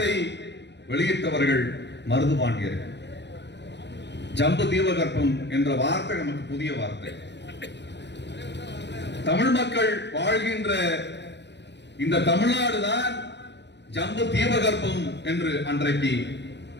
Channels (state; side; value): late; right; 0.51 ms